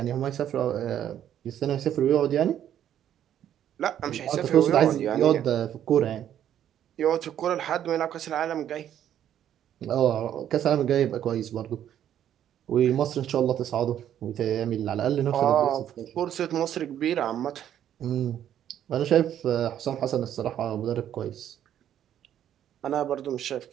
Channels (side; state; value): left; quieter; 10.5 dB